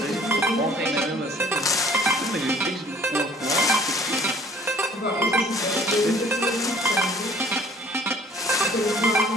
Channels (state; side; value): normal; both; correlation 0.54